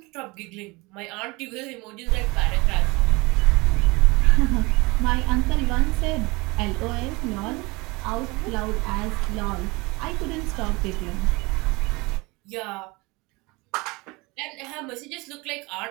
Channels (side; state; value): left; quieter; 24.8 dB